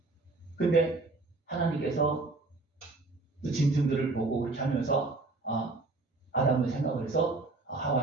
근데 하나님께서 그 짐승들을 보고 그렇게 하면서 아담을 생각을 해서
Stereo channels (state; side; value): quieter; left; 3.4 dB